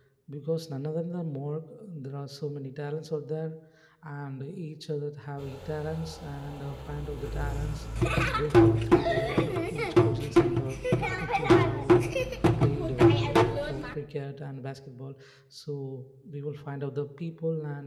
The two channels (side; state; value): both; identical; correlation 1.00